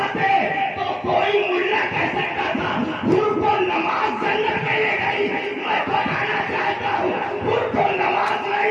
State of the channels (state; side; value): identical; both; correlation 1.00